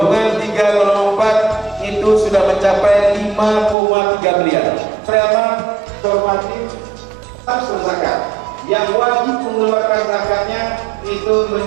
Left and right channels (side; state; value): left; drops out; at 3.8 s